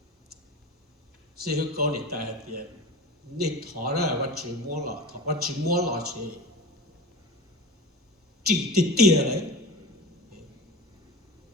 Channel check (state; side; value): normal; both; correlation 0.32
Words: sẽ hữu có để tại thì nên thọ ra bắt chữ mua lọ thọ bắt chữ mua lọ chỉ tiền đấy